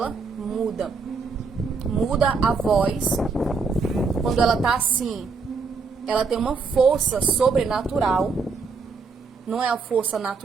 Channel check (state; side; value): quieter; left; 4.7 dB